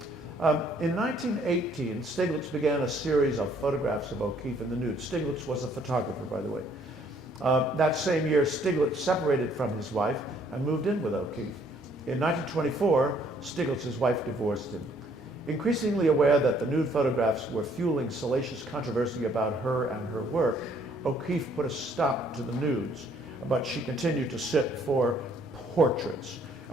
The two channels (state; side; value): normal; both; correlation 0.64